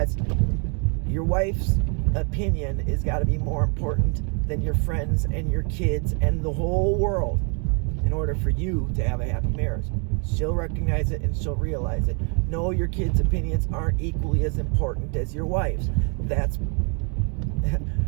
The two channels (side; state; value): left; quieter; 37.5 dB